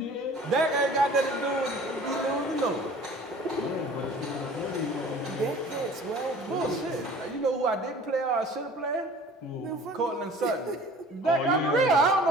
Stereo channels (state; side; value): normal; both; correlation 0.47